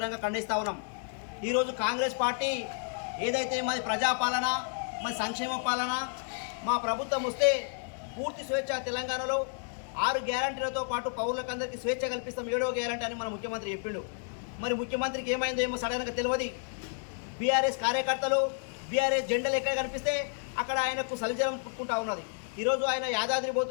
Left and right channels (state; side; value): silent; right; 57 dB below the other